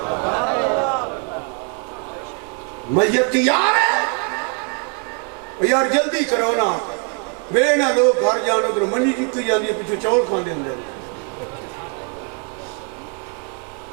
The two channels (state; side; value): quieter; left; 37.1 dB